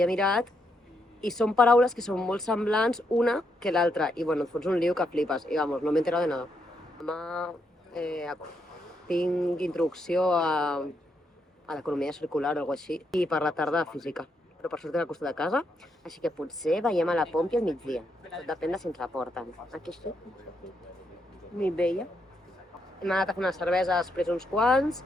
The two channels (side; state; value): both; normal; correlation 0.79